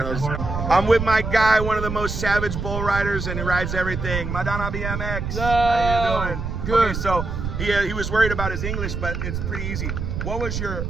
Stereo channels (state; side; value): noise; right; rumble, 4 dB below the sound